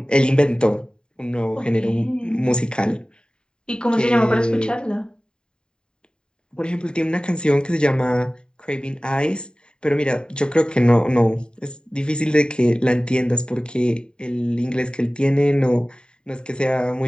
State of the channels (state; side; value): late; right; 0.048 ms